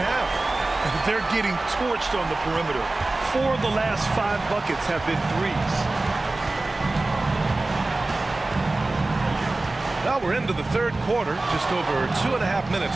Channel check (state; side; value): quieter; left; 3.0 dB